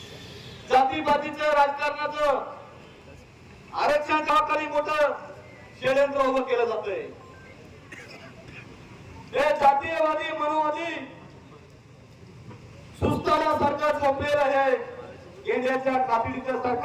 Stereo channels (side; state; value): both; identical; correlation 1.00